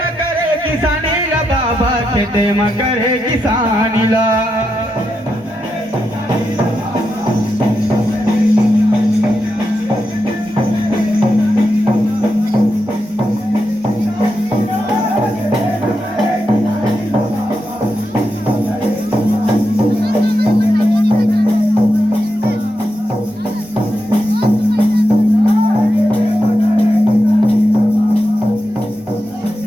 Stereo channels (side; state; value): both; normal; correlation 0.86